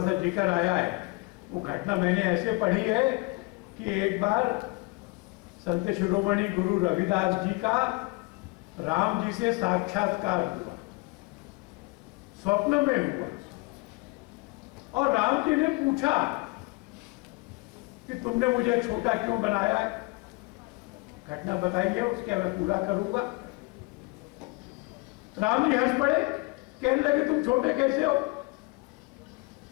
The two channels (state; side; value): quieter; right; 26.4 dB